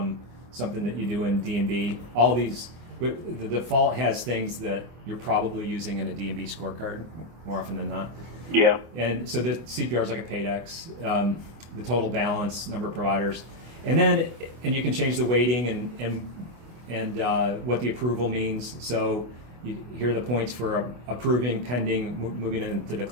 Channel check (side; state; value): left; late; 25 ms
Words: something that you do in D&B. All these, the default has things that you're probably using in a D&B scorecard more often than not. Yeah. And so the CPR is like a PAYDEX, the total balance, number of providers, and you can change the weighting and what the approval means. So here are the points for approving, pending, moving into